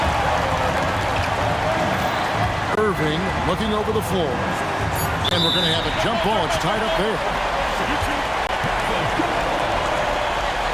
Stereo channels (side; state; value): both; identical; correlation 1.00